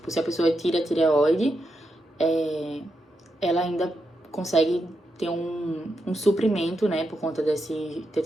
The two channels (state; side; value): normal; both; correlation 0.85